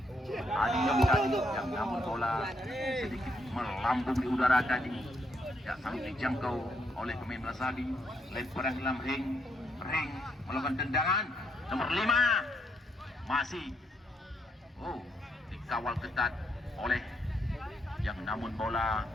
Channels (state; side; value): normal; both; correlation 0.75